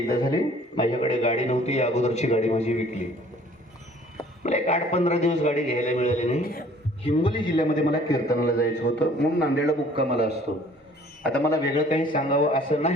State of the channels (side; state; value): both; normal; correlation 0.54